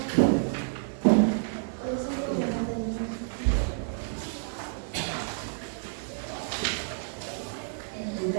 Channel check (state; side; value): silent; left; digital silence